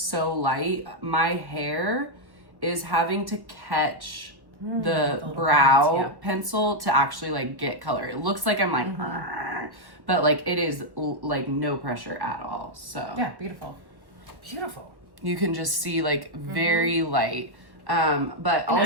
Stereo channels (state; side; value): late; left; 1.1 ms